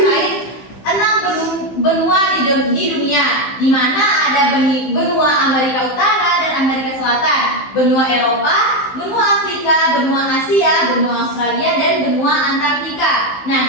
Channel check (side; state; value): right; late; 15 ms